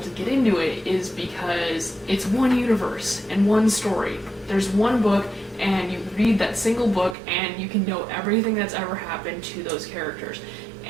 to get into it is because it's one universe and one story. There's one book, and you read that single book and you can know everything that's ever happened to those characters.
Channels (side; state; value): left; drops out; at 7.2 s